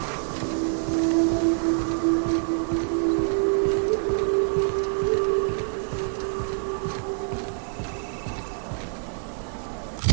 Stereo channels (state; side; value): silent; left; digital silence